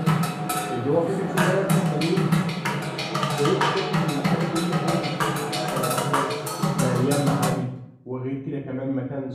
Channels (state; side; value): identical; both; correlation 1.00